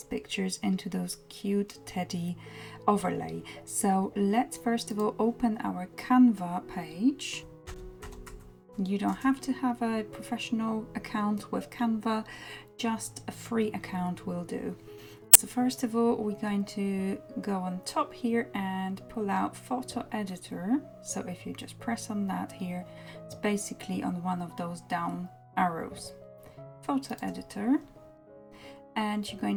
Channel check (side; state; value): both; identical; correlation 1.00